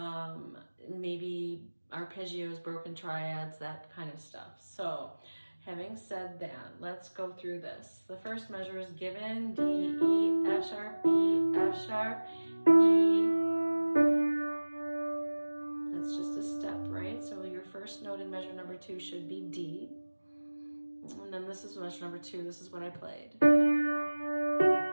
arpeggios, broken triads, that kind of stuff. So having said that, let's go through this. The first measure is given: D, E, F sharp, E, F sharp, E. That's just a step, right? So your first note in measure number 2 should be D. And then this is measure number 2. This is what I played.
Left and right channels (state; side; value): inverted; both; correlation -1.00